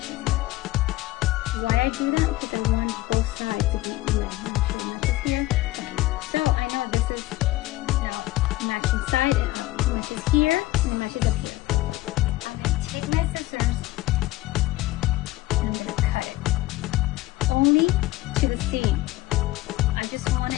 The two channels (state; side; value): quieter; right; 17.7 dB